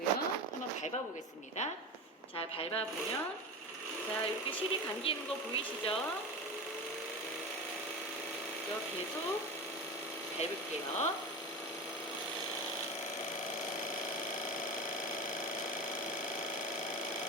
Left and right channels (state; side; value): normal; both; correlation 0.26